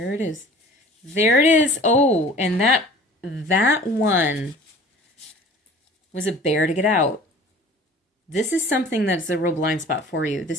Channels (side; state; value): both; normal; correlation 0.45